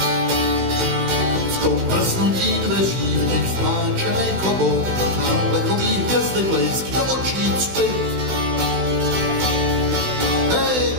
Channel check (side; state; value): left; late; 16 ms